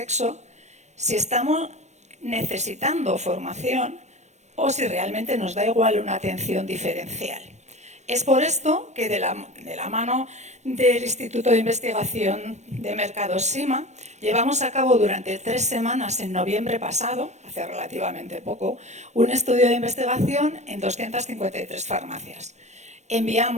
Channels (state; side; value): late; left; 0.33 ms